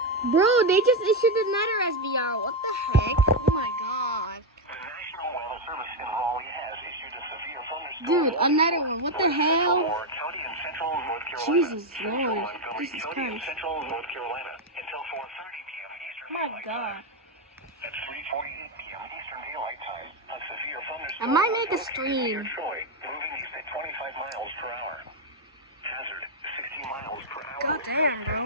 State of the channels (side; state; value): both; normal; correlation 0.05